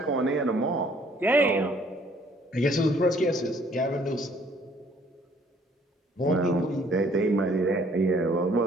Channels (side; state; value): both; normal; correlation 0.60